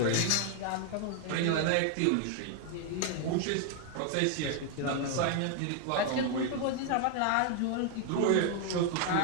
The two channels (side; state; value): both; different; correlation 0.00